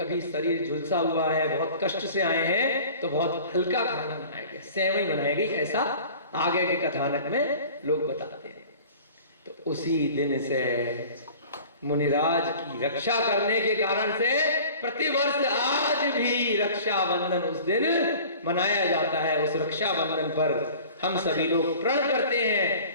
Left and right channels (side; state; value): both; inverted; correlation -0.44